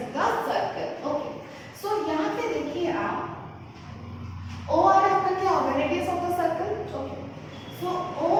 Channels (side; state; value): both; identical; correlation 1.00